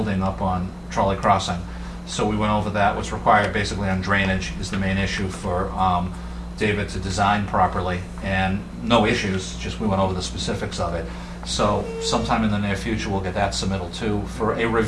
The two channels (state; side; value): identical; both; correlation 1.00